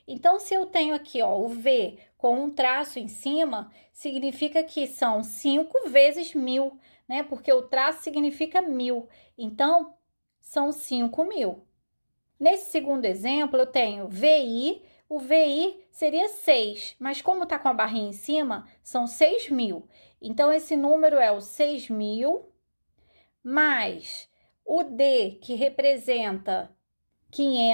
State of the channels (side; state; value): both; inverted; correlation -1.00